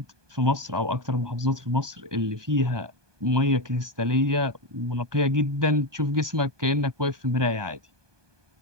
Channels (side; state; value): left; late; 1.2 ms